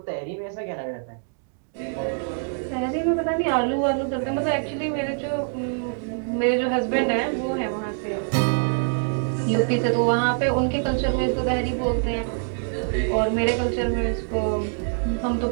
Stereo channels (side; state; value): left; silent; digital silence